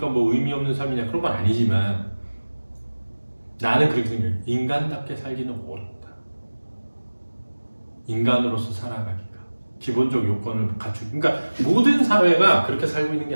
뭐 의미 없는 삶이냐 그런 건 아니지만 나는 그렇게 생각해. 인간답게 살기는 어렵다. 인간으로서 살아가기가 기본적 요건을 갖추고. 그러니까 모든 사회가 그렇게 살고 있는 게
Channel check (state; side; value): inverted; both; correlation -1.00